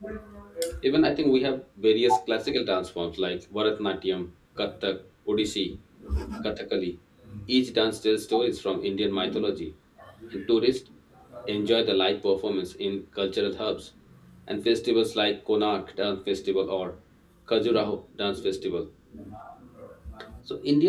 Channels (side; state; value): both; identical; correlation 1.00